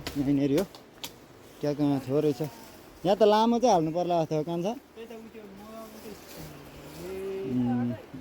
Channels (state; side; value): identical; both; correlation 1.00